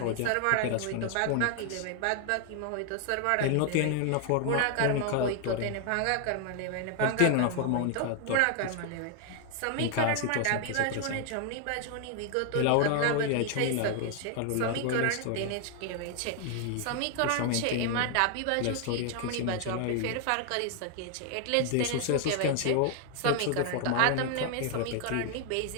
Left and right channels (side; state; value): both; different; correlation 0.00